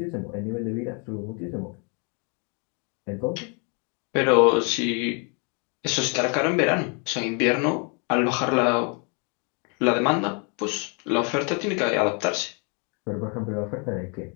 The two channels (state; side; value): quieter; right; 35.6 dB